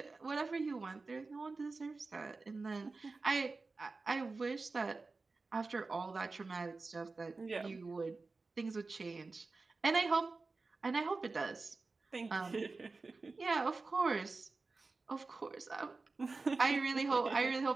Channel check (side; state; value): left; quieter; 3.8 dB